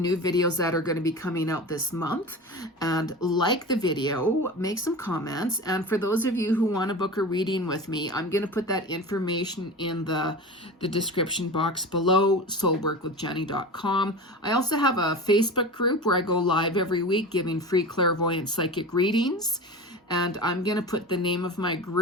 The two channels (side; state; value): both; normal; correlation 0.31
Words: videos that are going to be coming out this month. And like the video, make some comments. And for those of you who want to book a reading with me, I'm going to put that information in the description box below, soulworkwithjeni.com. I also have a Facebook group where I go live every week giving free clairvoyant psychic readings. And I'm going to put the name of my